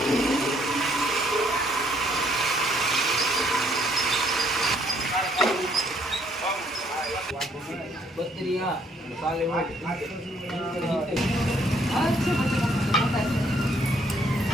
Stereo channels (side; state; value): both; normal; correlation 0.66